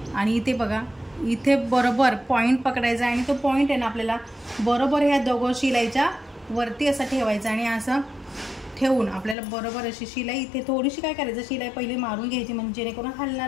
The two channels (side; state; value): right; drops out; at 9.3 s